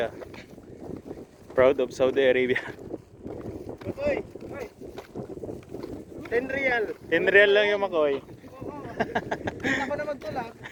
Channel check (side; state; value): both; identical; correlation 1.00